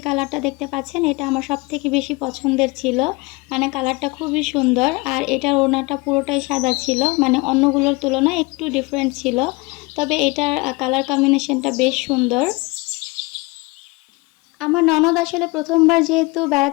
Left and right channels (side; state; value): right; quieter; 25.0 dB